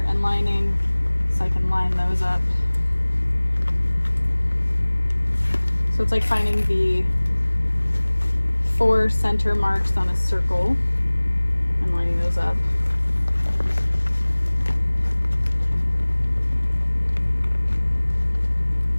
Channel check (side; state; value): both; inverted; correlation -1.00